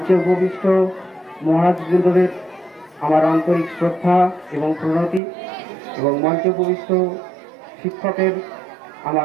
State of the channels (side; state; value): left; drops out; at 5.2 s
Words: উপবিষ্ট মহারাজবৃন্দদের আমার আন্তরিক শ্রদ্ধা এবং প্রণতি, এবং মঞ্চে উপবিষ্ট শিক্ষকের